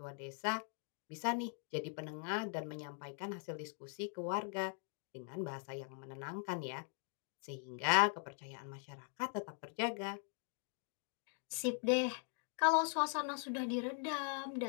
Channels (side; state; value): right; silent; 50 dB below the other